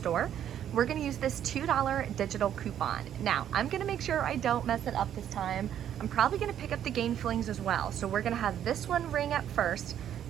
We're gonna use this $2 digital coupon. Now, I'm gonna make sure I don't mess it up this time. I'm probably gonna pick up the Gain Flings as well. So we're gonna have this one ring up first,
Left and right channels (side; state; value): left; quieter; 10.2 dB